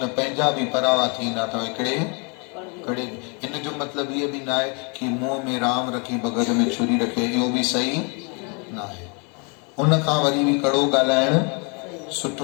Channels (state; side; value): quieter; right; 34.4 dB